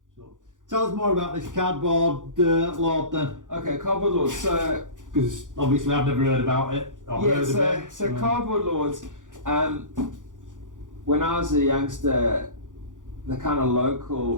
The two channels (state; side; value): late; left; 0.87 ms